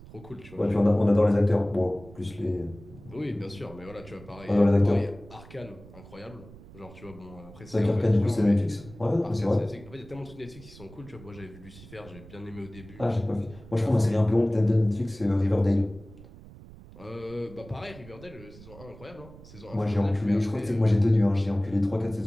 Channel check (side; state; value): right; noise; rumble, 19 dB below the sound